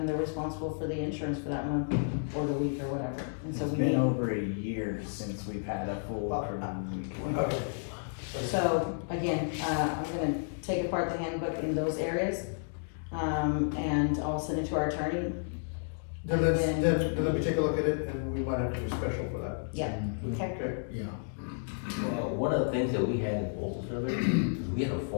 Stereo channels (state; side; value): silent; right; digital silence